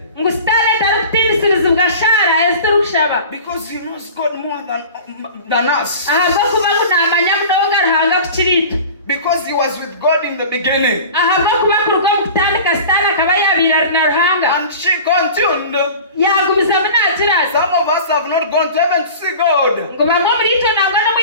ngu stane tarukutinisiriza shara eziturukushaba because he knows God more than us. ahabwo kuba kunamanya munonga ruhanga kukiritu Because he was with God in the beginning. ahabwo kuba kuruga mu kutandika sitani akaba yabira na ruhanga And she continued. yagumiza munakiraza Some of us have not gone to heaven to see God. ngo bamwe muri ito ntabwo no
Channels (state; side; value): inverted; both; correlation -0.38